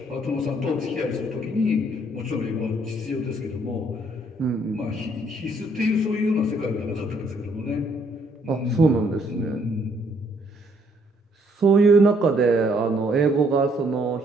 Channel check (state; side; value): normal; both; correlation 0.67